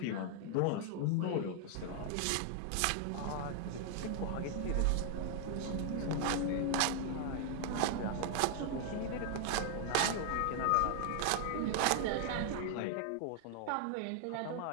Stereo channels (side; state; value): both; different; correlation 0.00